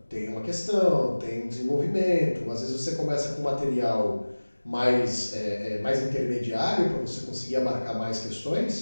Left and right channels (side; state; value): both; inverted; correlation -1.00